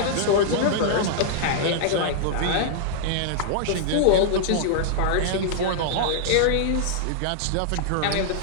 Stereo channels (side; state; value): both; different; correlation -0.01